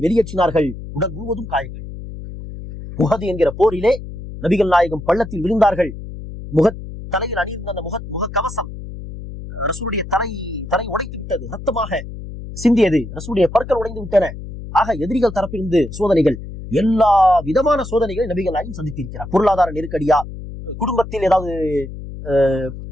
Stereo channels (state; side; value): noise; left; hum, 11 dB below the sound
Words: வெளியேற்றினார்கள். உடல் முழுவதும் காயங்கள். உஹது என்கிற போரிலே நபிகள் நாயகம் பள்ளத்தில் விழுந்தார்கள். தலையில் அணியிருந்த அந்த முக கவசம் ரசூலுடைய தலை உடைத்து விட்டது. ரத்தமாக சிந்தியது. ரசூலுடைய பற்கள் உடைந்து விட்டன. ஆக எதிரிகள் தரப்பிலிருந்து சோதனைகள், எல்லா விதமான சோதனைகளை நபிகள் நாயகம் சந்தித்திருக்கிறார். பொருளாதார நெருக்கடியா, குடும்பத்தில் ஏதாவது